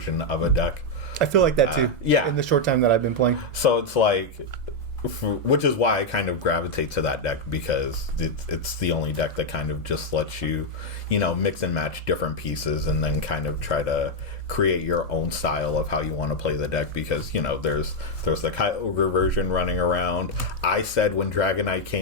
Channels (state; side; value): normal; both; correlation 0.01